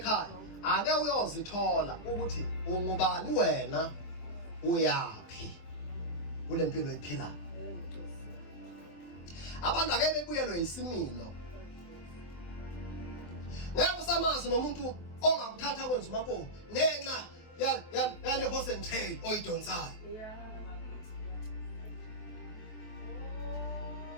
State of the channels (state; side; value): late; right; 24 ms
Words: ake uyozithola ukuthi ungubani wena uyapi kule mpilo ephilayo abantu ake bebuyelwe isimilo ngeke usamazi nomuntu ongakuthatha kwenza umakho ngenxa yale horse and tail oyidonsayo